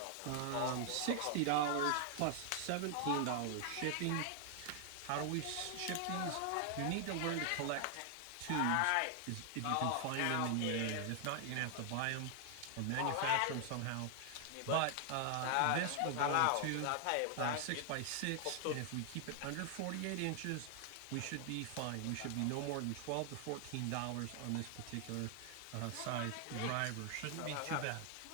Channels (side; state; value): both; different; correlation 0.00